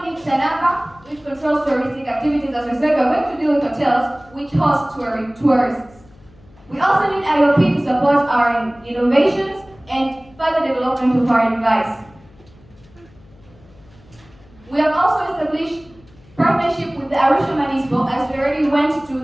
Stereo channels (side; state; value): left; noise; hum, 26 dB below the sound